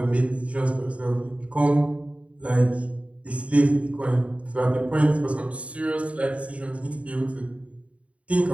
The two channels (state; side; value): late; left; 0.065 ms